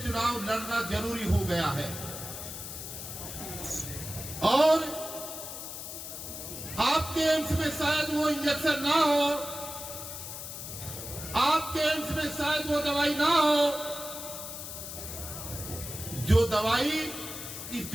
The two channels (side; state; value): left; noise; hiss, 8 dB below the sound